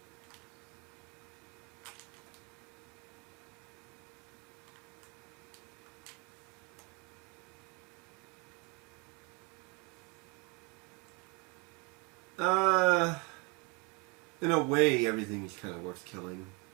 In a way, everything's kind of worth killing.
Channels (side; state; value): left; quieter; 26.8 dB